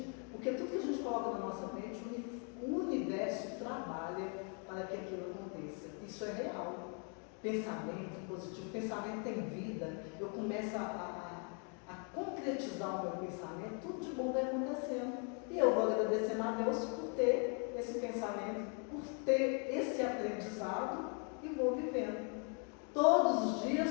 porque tudo que a gente coloca na nossa mente, o universo trabalha para que aquilo aconteça. Isso é real. Pensamento positivo, pensamento tem vida, eu começo a concretizar o meu pensamento, tudo de bom vai acontecendo. E eu vou agradecendo a Deus por ter esse pensamento, por ter esse aprendizado e vou vivendo. Todos os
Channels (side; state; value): right; quieter; 39.1 dB